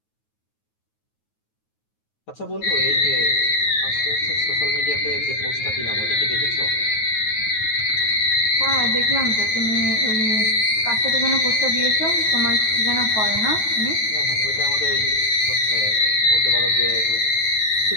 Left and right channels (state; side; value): late; right; 9.3 ms